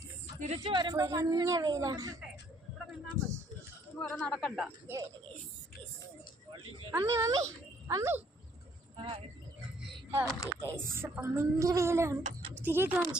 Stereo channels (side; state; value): both; normal; correlation 0.65